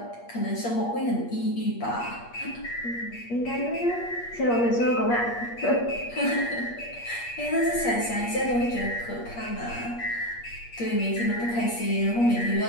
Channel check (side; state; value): right; late; 8.5 ms